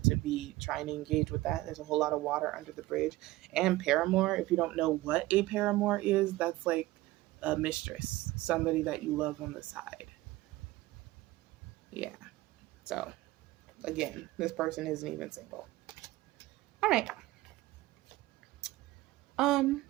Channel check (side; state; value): left; quieter; 18.2 dB